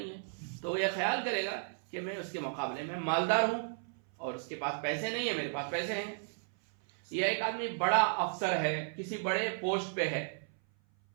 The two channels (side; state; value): left; silent; 55 dB below the other